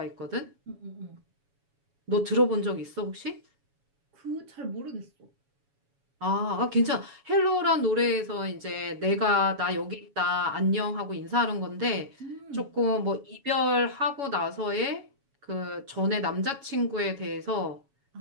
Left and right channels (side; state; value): left; late; 7.2 ms